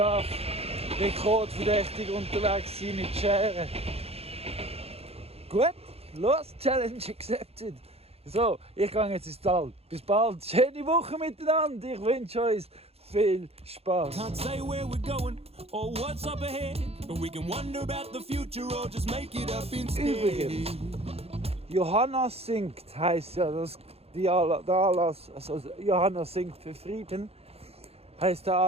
rekordverdächtig unterwegs sein mit Scheren. Gut, los, Challenge accepted. So, ich gehe jetzt ins Tal. Bis bald. Schöne Woche miteinander. Ich wünsche euch viel Spaß. Can't say where we're going or what's up ahead, but we can wonder about the future or just make it up instead. Übrigens, Johanna singt, heisst ja der Anlass, also Johanna singt für Frieden, heisst der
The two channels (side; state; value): left; late; 0.29 ms